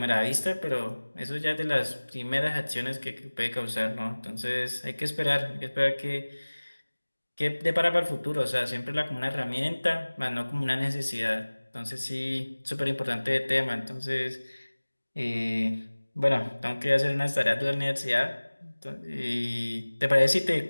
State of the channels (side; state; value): both; inverted; correlation -1.00